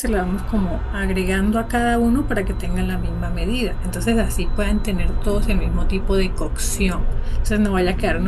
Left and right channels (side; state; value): both; identical; correlation 1.00